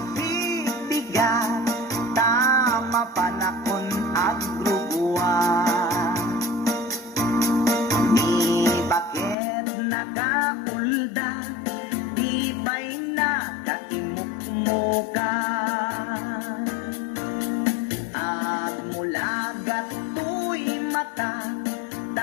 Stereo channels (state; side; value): drops out; right; at 9.3 s